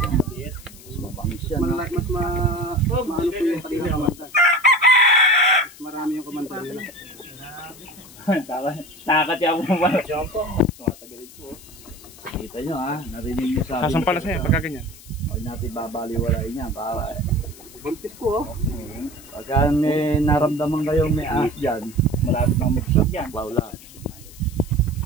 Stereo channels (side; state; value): left; noise; hiss, 20 dB below the sound